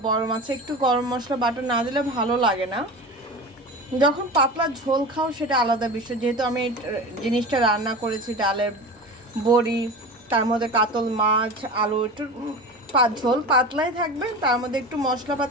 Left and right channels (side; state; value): both; normal; correlation 0.31